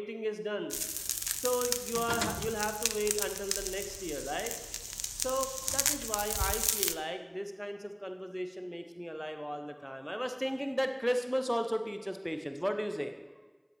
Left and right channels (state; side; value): identical; both; correlation 1.00